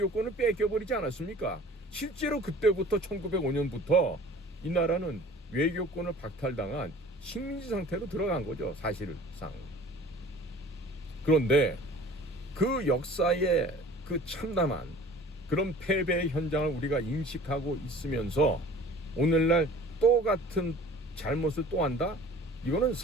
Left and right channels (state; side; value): normal; both; correlation 0.46